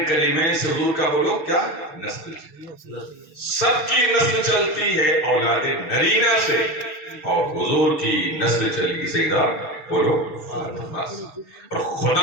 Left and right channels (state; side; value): late; right; 6.5 ms